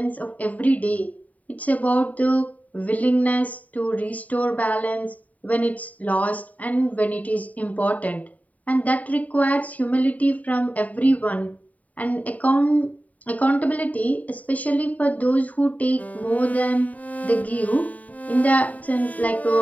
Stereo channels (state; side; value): late; right; 0.071 ms